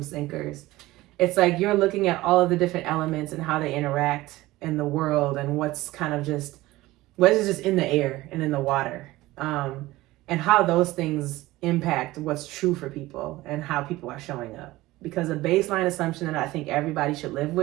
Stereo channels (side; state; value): left; quieter; 18.2 dB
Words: thinkers. It's like, you're looking at all of the different elements and how they interact in the world, and what is just in the air and in the water, and how those things impact what's true for people and how people are showing up. Because a baseline assumption that I think everybody should live